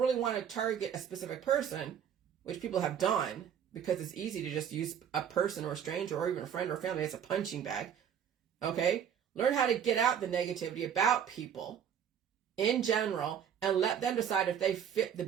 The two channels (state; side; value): quieter; left; 8.6 dB